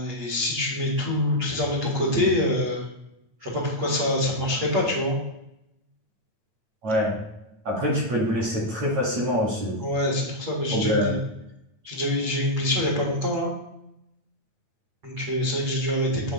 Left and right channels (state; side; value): late; left; 9.0 ms